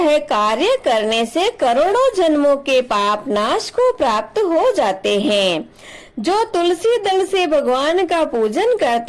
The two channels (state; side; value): identical; both; correlation 1.00